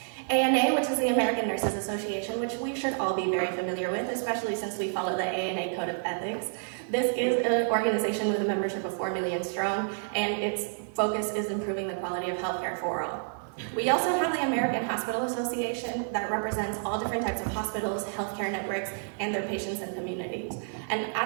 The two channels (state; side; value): silent; left; digital silence